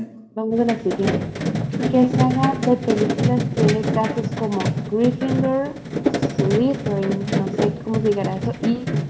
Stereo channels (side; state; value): both; identical; correlation 1.00